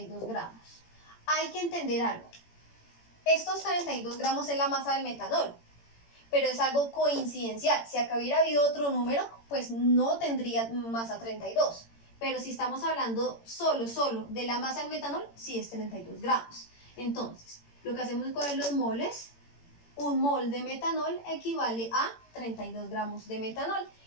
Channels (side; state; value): right; late; 18 ms